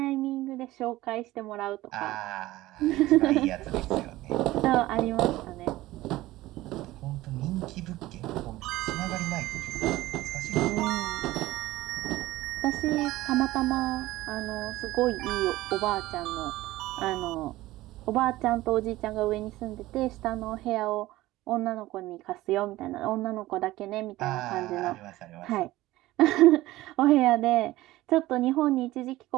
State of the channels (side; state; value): left; quieter; 17.3 dB